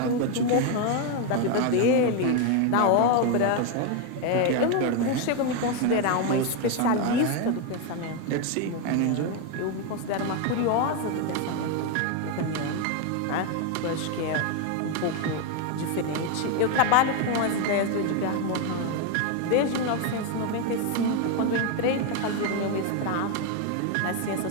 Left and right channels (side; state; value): both; different; correlation 0.01